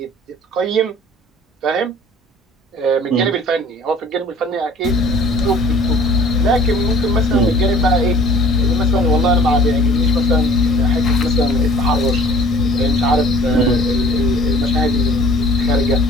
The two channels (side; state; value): both; normal; correlation 0.50